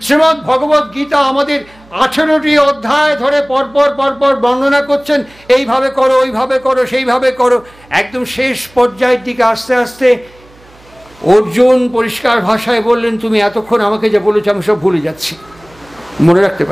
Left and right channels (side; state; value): right; noise; hum, 27 dB below the sound